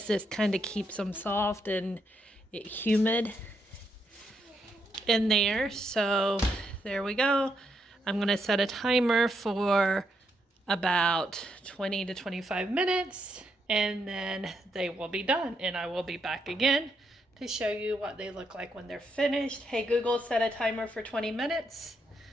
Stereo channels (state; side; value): normal; both; correlation 0.79